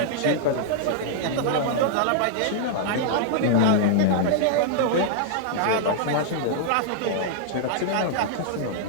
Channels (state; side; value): different; both; correlation -0.01